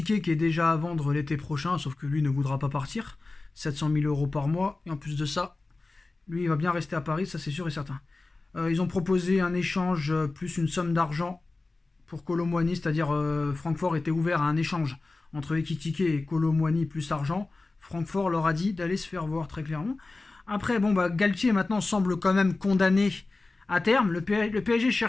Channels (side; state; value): right; quieter; 3.4 dB